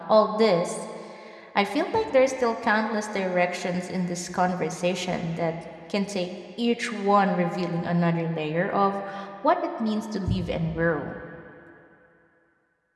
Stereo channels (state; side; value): identical; both; correlation 1.00